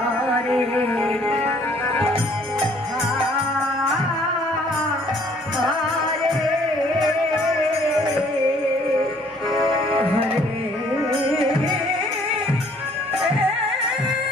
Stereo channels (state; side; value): normal; both; correlation 0.60